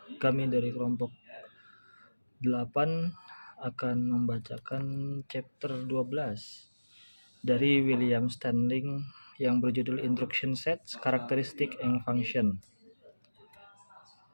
Kami dari kelompok 8 akan membacakan chapter 12 dari William Standing yang berjudul Instruction Sets, Characteristic and Function.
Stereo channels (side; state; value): both; inverted; correlation -1.00